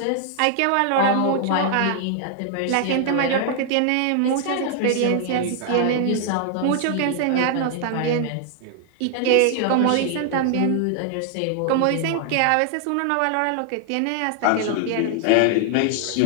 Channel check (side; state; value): both; different; correlation 0.00